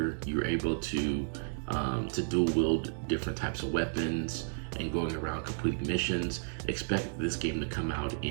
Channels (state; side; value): silent; left; digital silence